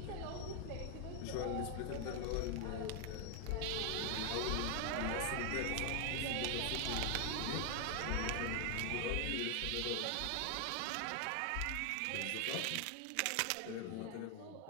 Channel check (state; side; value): different; both; correlation 0.00